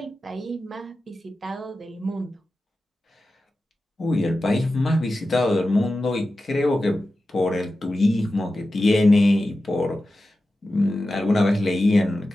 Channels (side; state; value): both; normal; correlation 0.93